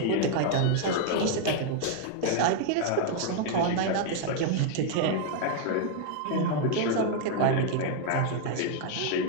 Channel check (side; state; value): both; different; correlation 0.00